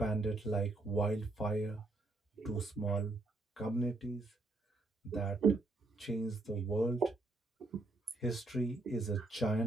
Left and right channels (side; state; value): left; quieter; 3.0 dB